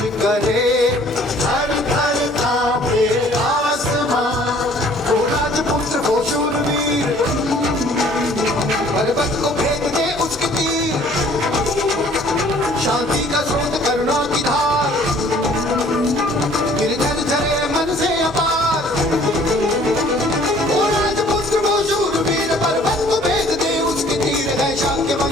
शांति का स्रोत करुणा की धार।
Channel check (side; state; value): both; normal; correlation 0.55